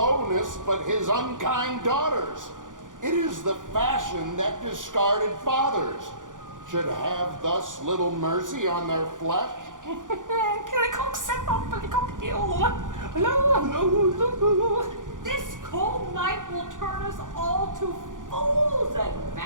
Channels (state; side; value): late; left; 0.88 ms